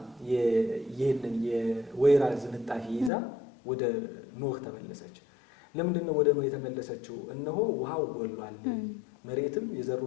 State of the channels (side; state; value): right; drops out; at 3.1 s